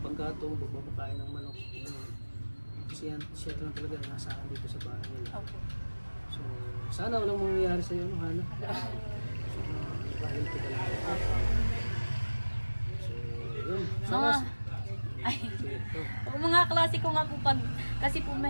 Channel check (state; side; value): inverted; both; correlation -1.00